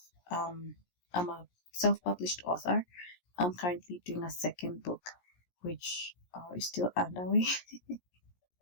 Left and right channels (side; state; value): right; late; 17 ms